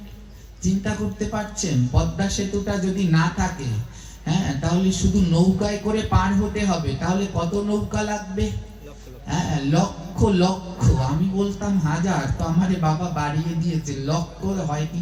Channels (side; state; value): both; identical; correlation 1.00